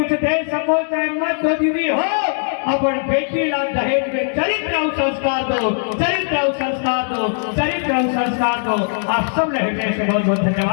दे सको चाहे मत दो दीदी हो, अपन बेटी ला दहेज में चरित्र और संस्कार दो, चरित्र और संस्कार दो, चरित्र और संस्कार दो। आप सब रहे से बहुत बहुत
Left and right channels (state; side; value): silent; right; digital silence